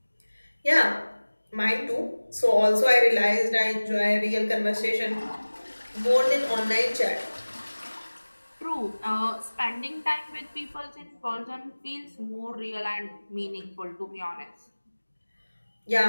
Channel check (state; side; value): inverted; both; correlation -1.00